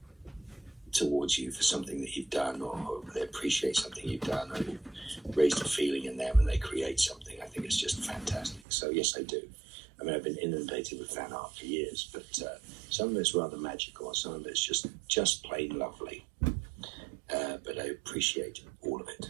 towards you for something that you've done, or they appreciate something you've done, or you've raised a feeling in them and they create something, I think it's just fantastic. So yes, I do. I mean, I've been inundated with fan art for years, but some of it's rather magical, and some of it's just plain lovely. But I appreciate all of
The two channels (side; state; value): left; drops out; at 8.6 s